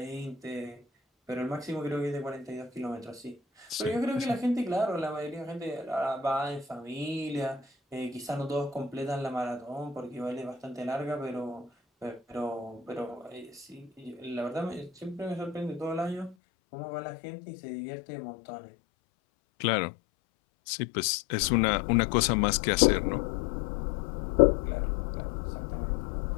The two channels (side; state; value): right; drops out; at 16.4 s